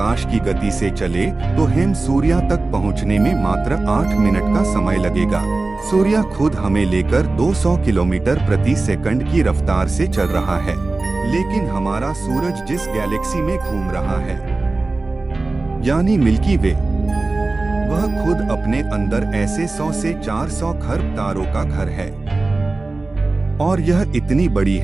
की गति से चले तो हम सूर्य तक पहुंचने में मात्र 8 मिनट का समय लगेगा। सूर्य खुद हमें लेकर 200 किलोमीटर प्रति सेकंड की रफ्तार से चल रहा है, लेकिन हमारा सूरज जिस गैलेक्सी में घूम रहा है, यानी मिल्की वे, वह खुद अपने अंदर ऐसे 100 से 400 खरब तारों का घर है और यह इतनी बड़ी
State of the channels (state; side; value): quieter; left; 3.3 dB